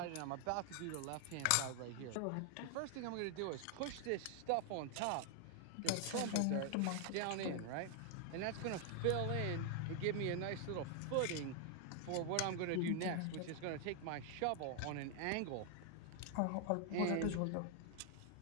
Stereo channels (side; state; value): both; different; correlation 0.00